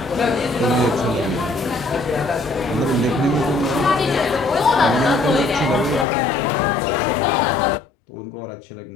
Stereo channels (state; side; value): drops out; right; at 6.1 s